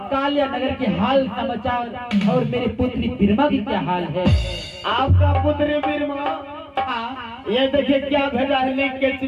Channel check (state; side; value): identical; both; correlation 1.00